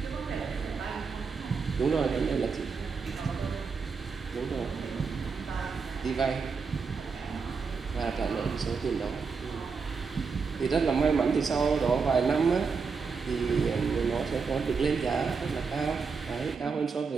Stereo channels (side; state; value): left; quieter; 5.2 dB